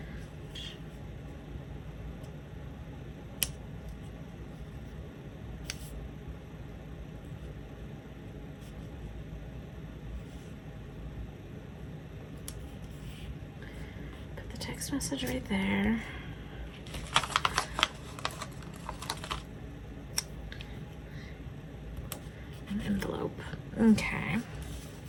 Put the text message right there. Envelope. Okay.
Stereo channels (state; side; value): identical; both; correlation 1.00